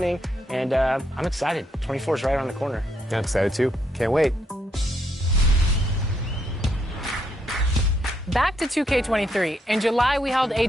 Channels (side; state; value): both; normal; correlation 0.76